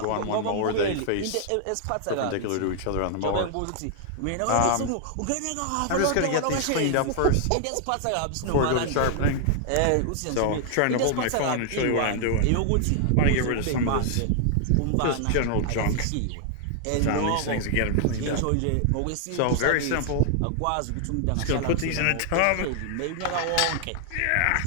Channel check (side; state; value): both; different; correlation 0.00